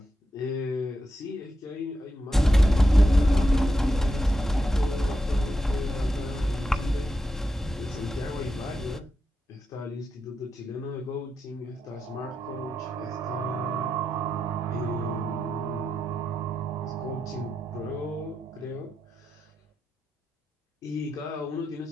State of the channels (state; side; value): normal; both; correlation 0.87